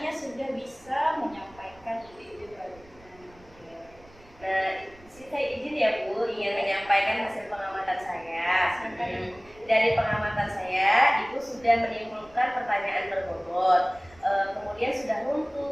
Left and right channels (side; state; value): right; noise; rumble, 25 dB below the sound